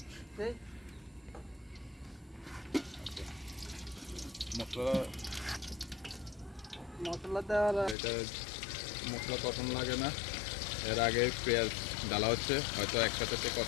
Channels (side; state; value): right; drops out; at 8.0 s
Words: মশলা দেওয়া। এটা মশলা তখন লাগে না, এর আগে পেঁয়াজ ডালা হচ্ছে, হয়তো একসাথে